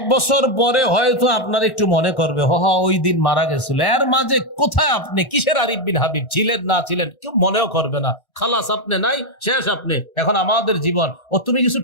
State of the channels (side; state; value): right; late; 1.3 ms